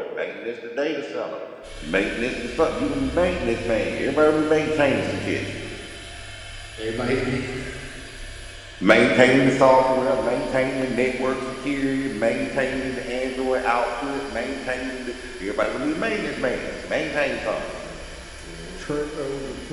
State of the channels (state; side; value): identical; both; correlation 1.00